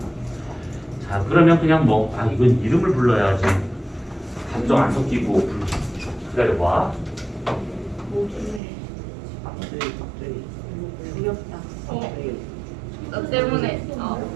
자, 그러면 그냥 이건 이름을 불러야지. 감정 안 섞이고 기다려봐. 두렵다. 너 때문에.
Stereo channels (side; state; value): left; drops out; at 8.6 s